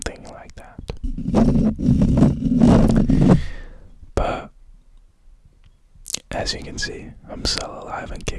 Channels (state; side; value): identical; both; correlation 1.00